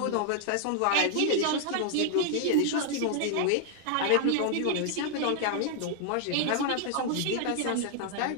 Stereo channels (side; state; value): both; different; correlation 0.00